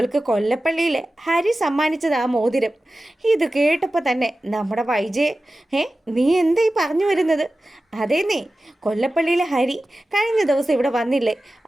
കൊല്ലപ്പള്ളിയിൽ ഹരി സമ്മാനിച്ചത് ആ മോതിരം. ഇത് കേട്ടപ്പോൾ തന്നെ നമ്മുടെ വൈജയ്, നീ എന്താ ഈ പറഞ്ഞു വരുന്നത്? അതേ, നീ കൊല്ലപ്പള്ളിയിലെ ഹരി കഴിഞ്ഞ ദിവസം ഇവിടെ വന്നില്ലേ,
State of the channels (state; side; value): normal; both; correlation 0.95